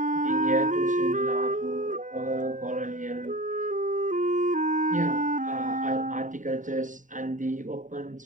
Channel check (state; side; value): late; left; 0.37 ms